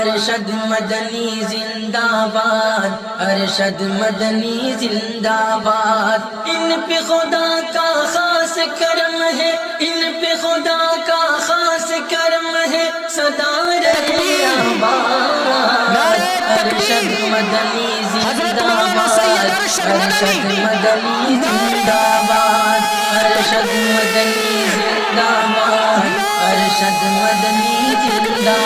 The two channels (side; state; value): both; identical; correlation 1.00